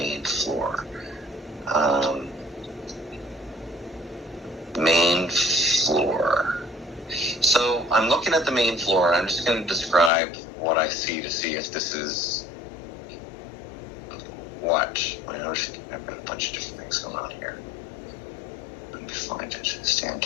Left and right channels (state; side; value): drops out; right; at 10.1 s